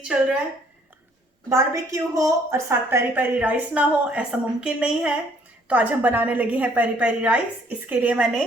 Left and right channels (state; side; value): normal; both; correlation 0.62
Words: चल रहा है। बारबेक्यू हो और साथ पेरी पेरी राइस ना हो ऐसा मुमकिन नहीं है। तो आज हम बनाने लगे हैं पेरी पेरी राइस। इसके लिए